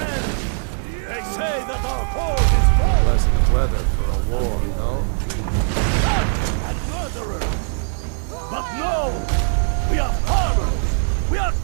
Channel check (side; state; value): left; silent; digital silence